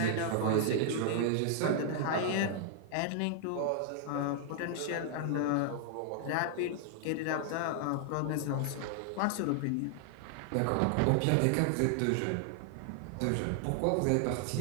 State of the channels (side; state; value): both; different; correlation 0.00